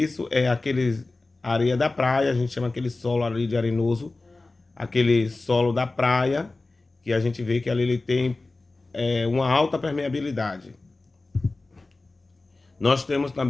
é aquele areia da praia, a gente chama aquele solo ali de arenoso, aquele solo da praia, que a gente vê que ali ele tem uma alta permeabilidade. Nós temos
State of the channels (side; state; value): right; quieter; 3.3 dB